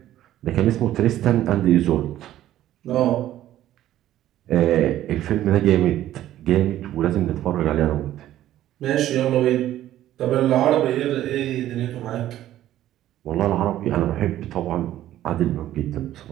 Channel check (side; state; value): left; quieter; 13.1 dB